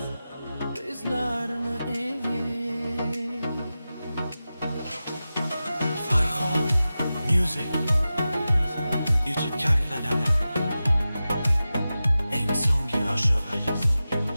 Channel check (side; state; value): both; inverted; correlation -0.94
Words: bizlarni. Farhon Music YouTube kanalida eng so'nggi oshig'i